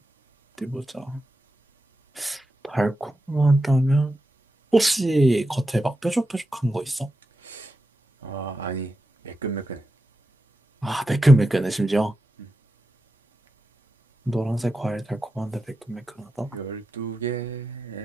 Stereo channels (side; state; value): both; normal; correlation 0.89